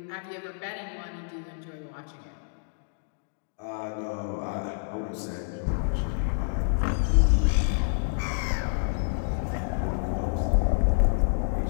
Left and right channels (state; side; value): silent; right; digital silence